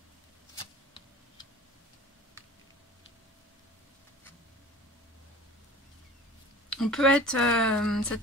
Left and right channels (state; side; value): normal; both; correlation 0.41